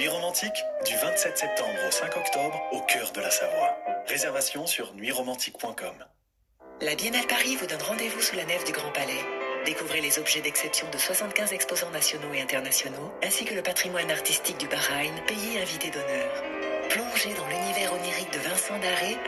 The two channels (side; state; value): both; identical; correlation 1.00